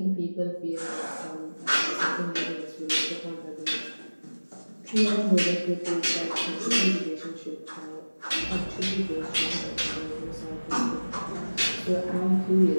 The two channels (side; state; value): both; inverted; correlation -1.00